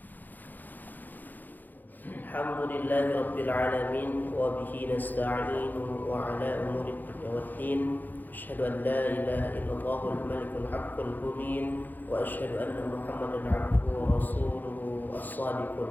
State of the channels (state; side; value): late; right; 0.086 ms